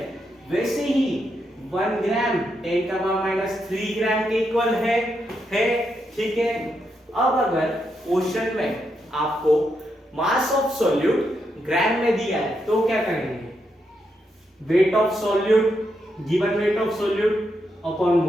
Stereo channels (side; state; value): both; normal; correlation 0.82